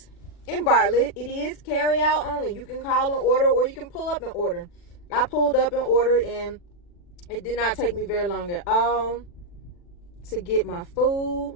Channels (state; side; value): late; right; 40 ms